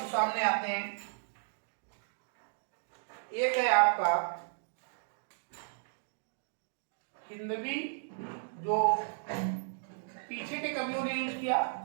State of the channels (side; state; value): left; silent; digital silence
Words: सामने आते हैं। एक है आपका हिंदवी, जो पीछे के कवियों ने यूज किया,